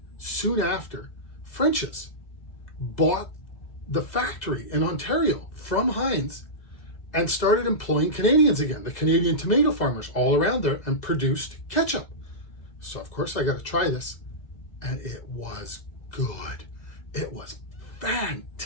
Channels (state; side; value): late; right; 2.0 ms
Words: soon after, French's bought the factory in Ontario from Heinz and started employing Canadians again, the Canadian tomato farmers all around there, and produced ketchup. So of course I got to try this, and it was good. It was